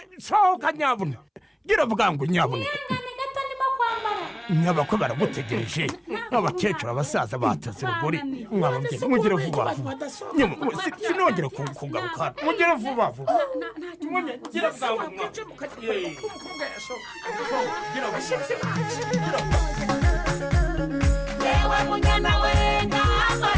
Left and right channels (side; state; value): both; identical; correlation 1.00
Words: sohoka nyabuna gira bwangu nyabuna nyabako baragutegereje abakecuru abasaza batase rugori mwababye mugire vuba vuba sinongere kugaruka mugire vuba vuba gira bwangu gira bashitse yewe munyana wenga